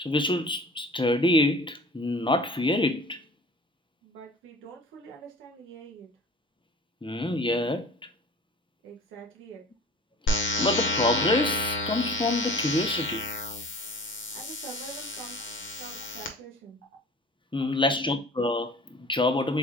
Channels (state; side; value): normal; both; correlation 0.43